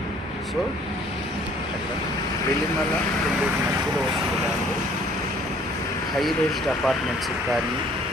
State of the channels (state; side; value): normal; both; correlation 0.57